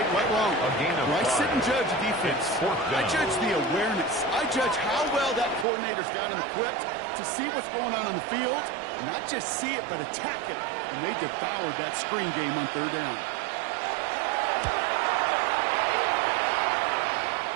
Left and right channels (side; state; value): left; drops out; at 5.7 s